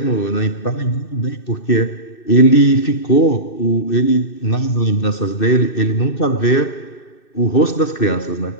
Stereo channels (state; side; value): late; right; 2.6 ms